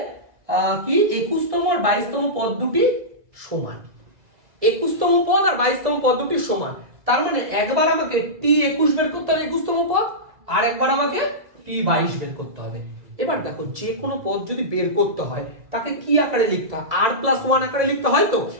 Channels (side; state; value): left; late; 2.0 ms